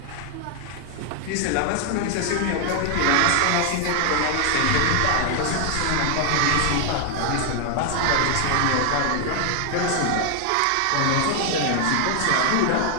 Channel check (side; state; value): both; different; correlation 0.00